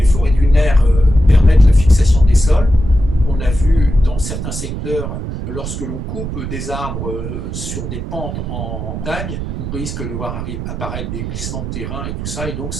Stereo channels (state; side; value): noise; right; rumble, 6 dB below the sound